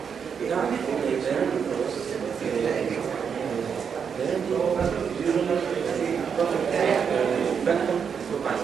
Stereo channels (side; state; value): left; quieter; 6.8 dB